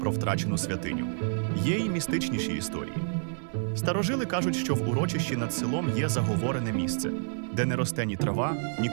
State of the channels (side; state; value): left; silent; 59 dB below the other